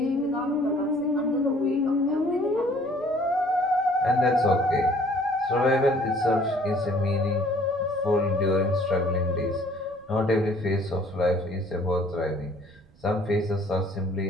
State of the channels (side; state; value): right; noise; rumble, 28 dB below the sound